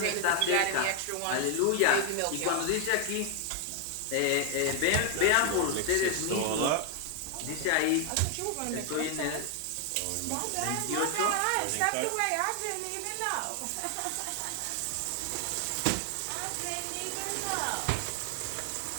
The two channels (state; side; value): different; both; correlation 0.00